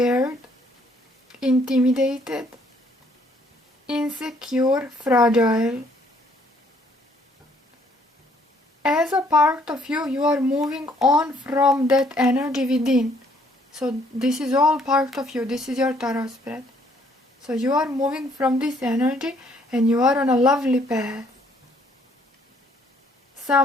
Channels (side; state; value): both; normal; correlation 0.65